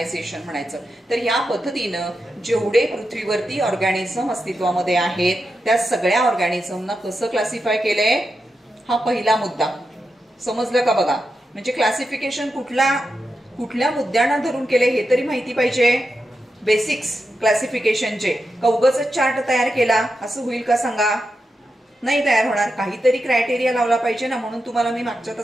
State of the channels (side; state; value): both; normal; correlation 0.88